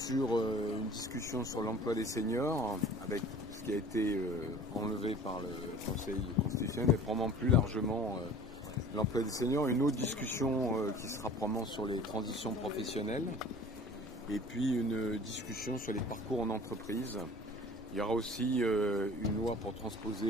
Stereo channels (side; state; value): both; normal; correlation 0.45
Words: une discussion sur l'emploi des seniors, avec ce qui a été enlevé par le Conseil constitutionnel, et probablement plus largement l'emploi des seniors. Une autre discussion qui sera probablement sur les transitions professionnelles, et puis une discussion sur les parcours en entreprise. Il y aura aussi une loi pour